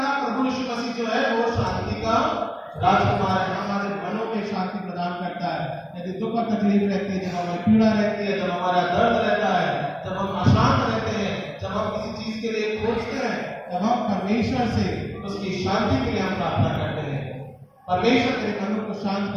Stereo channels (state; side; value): identical; both; correlation 1.00